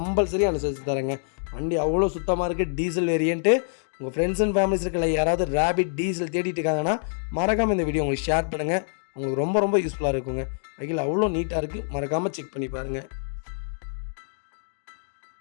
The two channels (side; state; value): right; silent; digital silence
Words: அனுசரித்து தரேங்க. வண்டி அவ்வளோ சுத்தமாக இருக்குது. Diesel variant. உங்கள் ஃப்ரெண்ட்ஸ் அண்ட் ஃபேமிலிஸ் இருக்கல யாராவது ரேபிட் டீசல் தேடிட்டு இருக்காங்கன்னா மறக்காமல் இந்த வீடியோ உங்களுக்கு ஷேர் பண்ணுங்கள். உங்களுக்கு ரொம்ப ரொம்ப யூஸ்ஃபுல்லாக இருக்குங்க. வெஹிக்கிள் அவ்வளோ நீட்டாக இருக்குது, மறக்காமல் செக் பண்ணி பாருங்கள்.